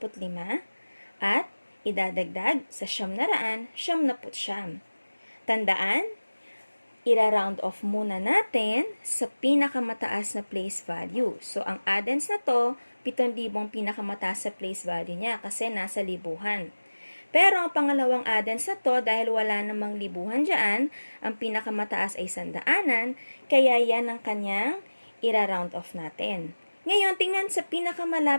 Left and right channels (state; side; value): inverted; both; correlation -1.00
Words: at idadagdag sa 999. Tandaan, ira-round off muna natin sa pinakamataas na place value. So, ang addends na to, 7,000 pinakamataas sa place value niya kasi nasa libuhan. Pero ang pangalawang addends na to, dahil wala namang libuhan dyan, ang pinakamataas ay 100, kaya yan ang kanyang ira-round off natin. Ngayon, tingnan sa